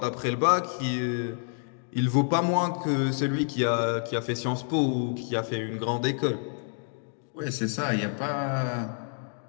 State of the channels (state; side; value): silent; right; 59 dB below the other